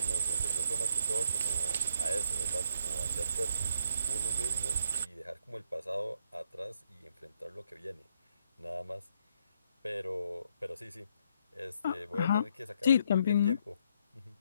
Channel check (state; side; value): inverted; both; correlation -0.72